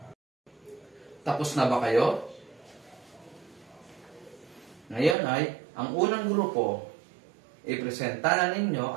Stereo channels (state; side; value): drops out; left; at 5.2 s